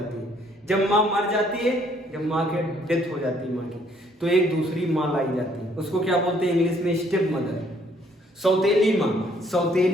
है। जब माँ मर जाती है, जब माँ के डेथ हो जाती है माँ की, तो एक दूसरी माँ लाई जाती है। उसको क्या बोलते हैं इंग्लिश में? Step mother. सौतेली माँ,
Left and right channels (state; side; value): normal; both; correlation 0.65